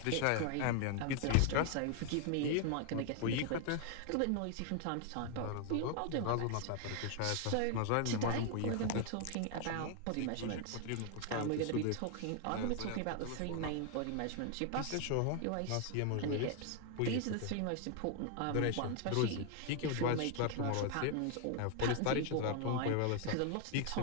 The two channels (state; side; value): different; both; correlation 0.00